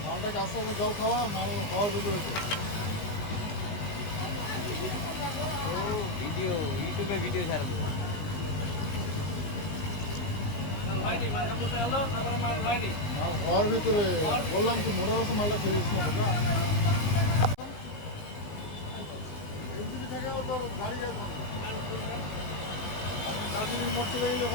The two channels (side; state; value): right; late; 19 ms